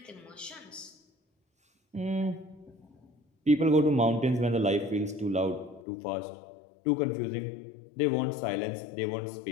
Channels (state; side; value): drops out; right; at 5.9 s